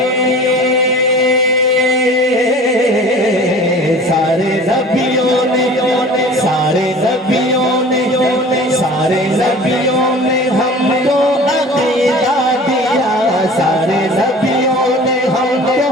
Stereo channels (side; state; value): both; normal; correlation 0.43